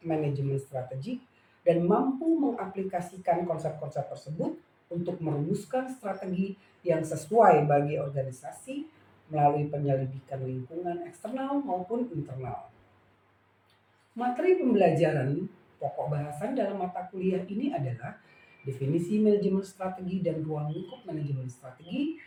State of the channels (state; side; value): identical; both; correlation 1.00